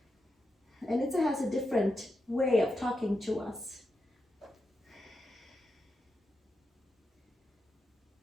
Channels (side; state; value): both; normal; correlation 0.87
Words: And it has a different way of talking to us.